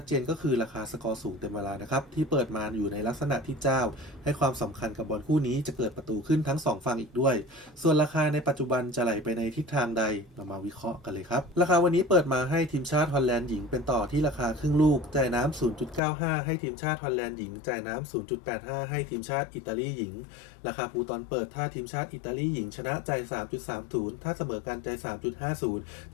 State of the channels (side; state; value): right; drops out; at 16.0 s